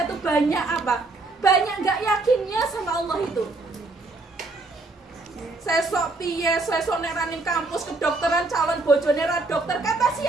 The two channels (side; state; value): left; quieter; 3.3 dB